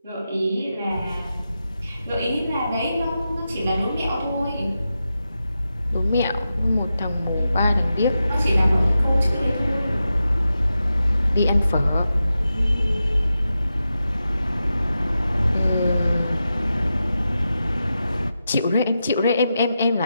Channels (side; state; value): both; inverted; correlation -0.90